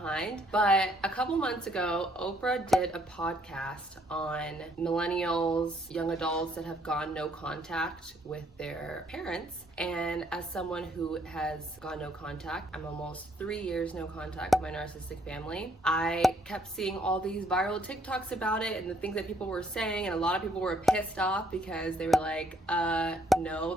but a couple months ago, Oprah did a podcast on millennials, young adults that have gone no contact with their parents. And as someone who has gone no contact, I'm almost 3 years no contact with my narcissistic family. I kept seeing all these viral TikToks about it and the things that people were saying, and a lot of people were pissed off because they were like, no,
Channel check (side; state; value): both; normal; correlation 0.67